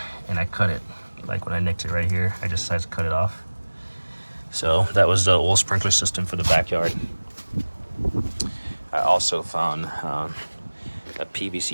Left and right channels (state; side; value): inverted; both; correlation -1.00